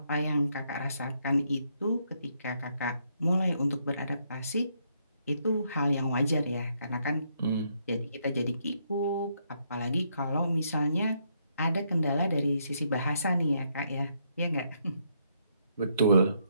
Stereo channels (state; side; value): inverted; both; correlation -0.74